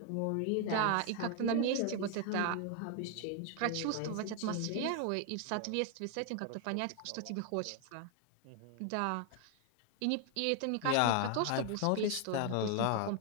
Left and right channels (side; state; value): both; different; correlation 0.00